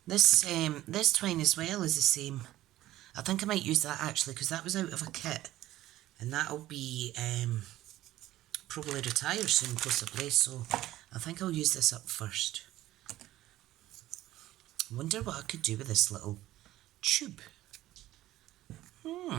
This twine as well is the same. I think I might use that actually, because that was out of a kit, and that'll be probably retire soon possibly, so I think I'll use this up first. Wonder what I could do with this little tube.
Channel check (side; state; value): left; quieter; 15.1 dB